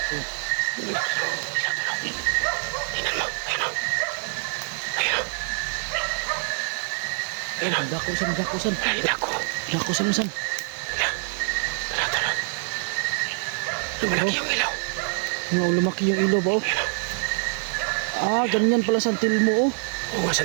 Ayan o. dakusan. Ay, nako. Dakusan. Tara, tara. Lumalaki yung ilaw. Ano, lumaki yung ilaw ba? Oh? Ah, ganyan pala santil mo. Oh. Oo nga,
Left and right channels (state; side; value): silent; left; 62 dB below the other